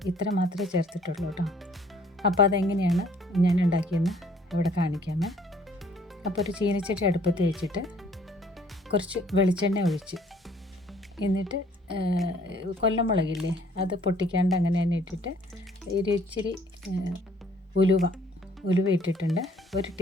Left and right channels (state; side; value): normal; both; correlation 0.59